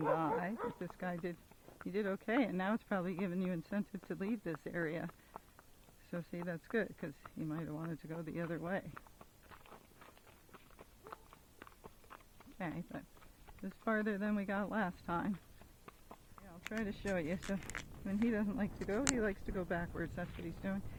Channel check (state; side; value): identical; both; correlation 1.00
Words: But this guy did okay, and now it's probably giving you incentive to leave this area. So see, that's good, because he might have wanted to go the other way. Okay, but it's farther than we got last time. Yeah, I'll try to show you. So when he doesn't like to go, he likes to go backwards. That's what he's doing.